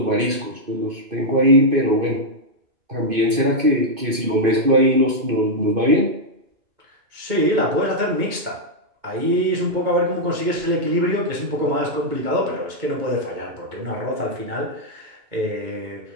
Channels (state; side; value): late; left; 2.5 ms